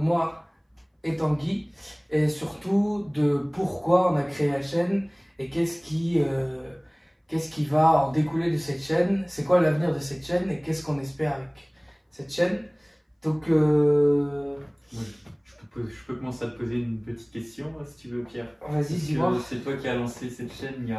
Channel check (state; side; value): identical; both; correlation 1.00